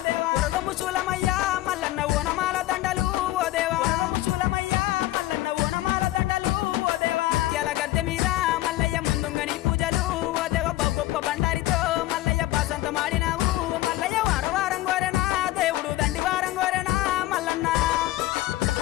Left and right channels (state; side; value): quieter; right; 16.1 dB